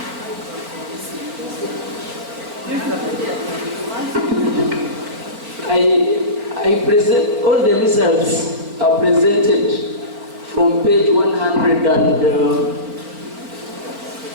I present, all the results are presented from page 120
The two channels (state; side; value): late; left; 4.5 ms